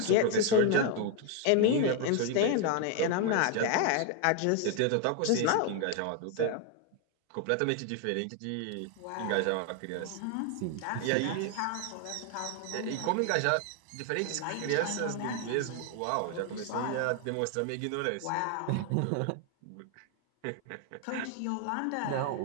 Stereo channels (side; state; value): both; different; correlation 0.01